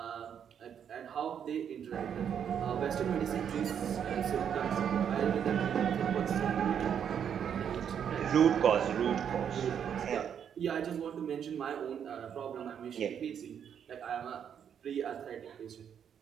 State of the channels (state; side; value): quieter; left; 8.3 dB